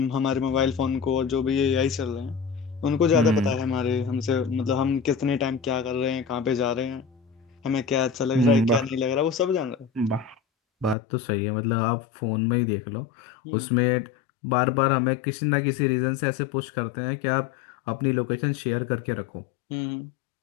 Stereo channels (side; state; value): right; drops out; at 11.0 s